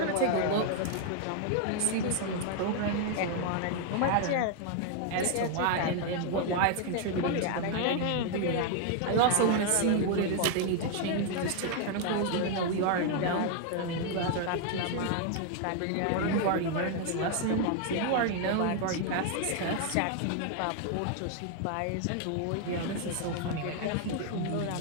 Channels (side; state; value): both; different; correlation 0.00